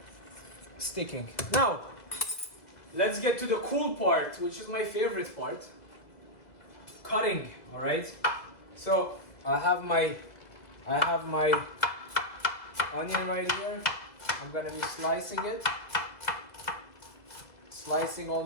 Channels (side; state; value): right; late; 2.0 ms